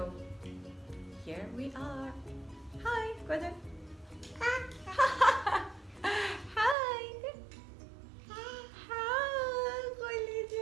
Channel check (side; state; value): left; drops out; at 6.8 s